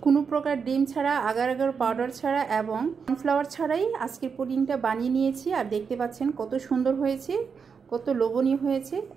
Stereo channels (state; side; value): quieter; left; 5.9 dB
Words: কোনো প্রকার ডিম ছাড়া, আগার আগার পাউডার ছাড়া এবং কর্নফ্লাওয়ার ছাড়াই আজকের পুডিংটা বানিয়ে নিয়েছি। আর দেখতে পাচ্ছেন কত সুন্দর হয়েছে, কত লোভনীয় হয়েছে,